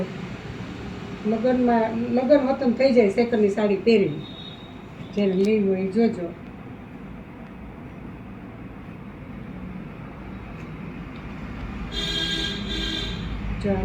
લગ્ન વતન થઈ જાય સેકન્ડની સાડી પહેરીને. જેને લેવી હોય એ જોજો. જો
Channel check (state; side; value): identical; both; correlation 1.00